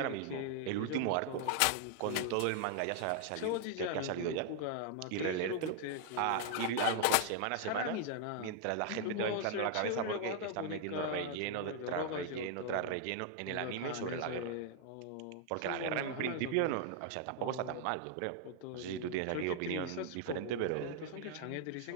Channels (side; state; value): both; different; correlation 0.00